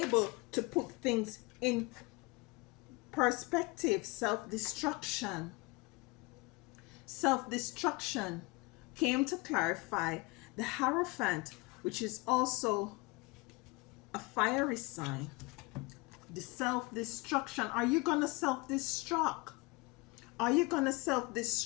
to put things in perspective. Self-destruction came to clarify the Hierophant, which is also a fiery sign. The self-destruction. Are you gonna self-destruct? Are you gonna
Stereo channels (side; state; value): right; quieter; 25.3 dB